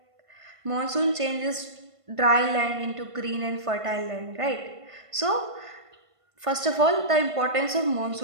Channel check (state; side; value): late; left; 1.5 ms